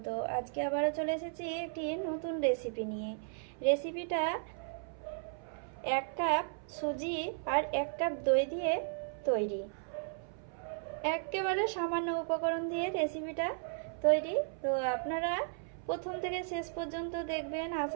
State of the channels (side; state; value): left; silent; 54 dB below the other